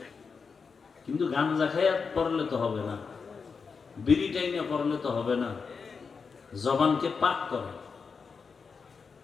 কিন্তু গাঞ্জা খাইয়া পড়লে তো হবে না, বিড়ি টাইনে পড়লে তো হবে না। জবানকে পাক করেন।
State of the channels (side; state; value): right; quieter; 5.3 dB